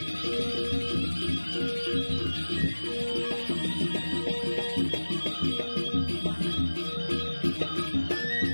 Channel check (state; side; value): inverted; both; correlation -1.00